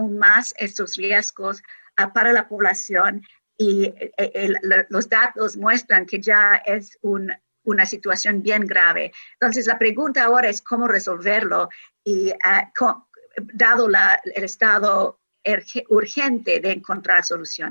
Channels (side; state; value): both; inverted; correlation -1.00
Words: más estos riesgos para la población y los datos muestran que ya es una situación bien grave. Entonces la pregunta ahora es cómo resolverlo y dado el estado urgente de encontrar